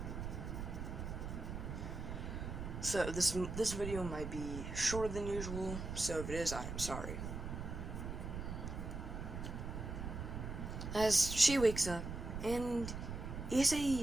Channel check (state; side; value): noise; right; rumble, 6 dB below the sound